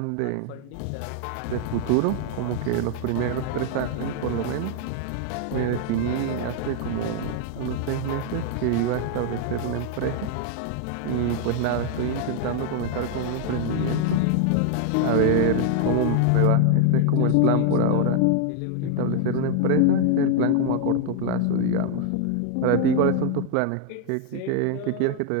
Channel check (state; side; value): different; both; correlation 0.00